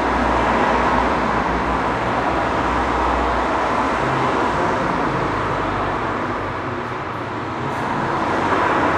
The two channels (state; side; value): identical; both; correlation 1.00